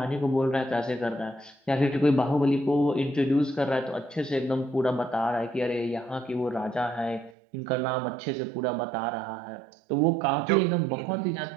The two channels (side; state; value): left; drops out; at 7.4 s